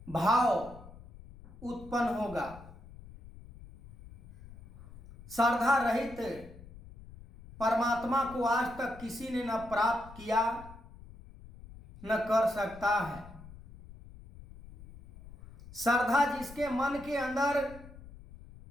भाव उत्पन्न होगा? श्रद्धा रहित परमात्मा को आज तक किसी ने न प्राप्त किया न कर सकता है। श्रद्धा जिसके मन के अंदर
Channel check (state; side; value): noise; left; rumble, 18 dB below the sound